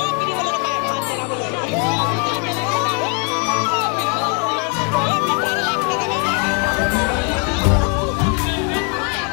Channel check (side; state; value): right; quieter; 37.5 dB